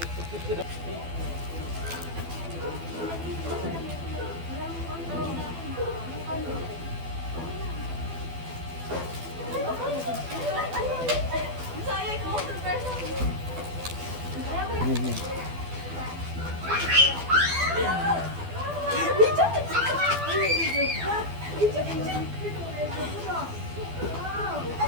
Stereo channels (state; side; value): late; left; 12 ms